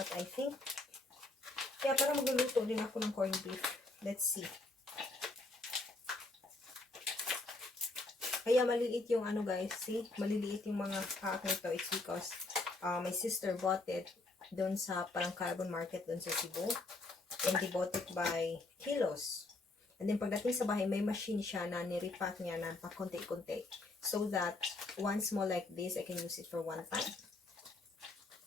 I think, kaya parang magluluto din ako ng corned beef. Let's see. Kaya maliliit yung guys, see? Maliliit yung mga ito. It's because my sister bought it doon sa parang carbon market doon sa Cebu. And they bought it by kilos. And then pagdating sa bahay, may machine siya na niripack niya na pa konti-konti. So that one small like this, I can use it for one time.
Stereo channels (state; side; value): quieter; right; 3.1 dB